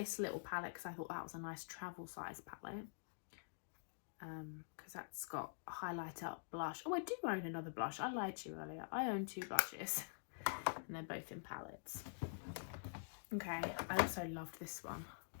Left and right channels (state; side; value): silent; right; digital silence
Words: little palette because I thought that was a nice travel size palette. Because that's got a highlighter, blush. Oh, I do own another blush. I lied to you earlier. I own 2 blushes. And they're both in palettes. Okay, I also loved this one.